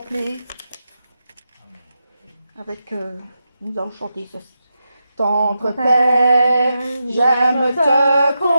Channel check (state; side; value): inverted; both; correlation -0.88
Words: ». Avec, nous allons chanter ceci. Tendre Père, j'aime te